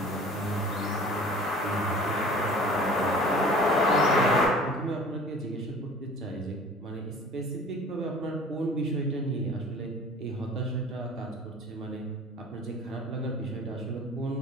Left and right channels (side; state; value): both; normal; correlation 0.46